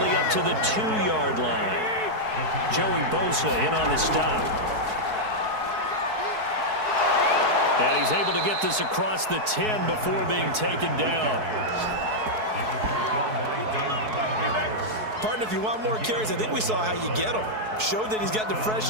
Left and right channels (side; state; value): left; late; 4.6 ms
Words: up to the 2-yard line. Joey Bosa in on the stop. And he's able to get this across the 10 before being taken down. Partner, if you want more carries, I think we saw how you get them. Showed that he's got the